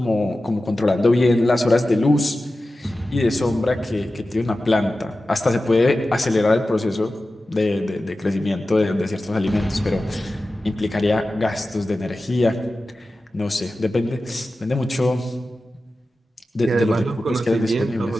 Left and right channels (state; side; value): normal; both; correlation 0.94